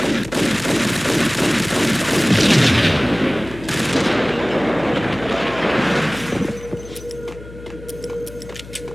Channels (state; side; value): noise; left; hum, 16 dB below the sound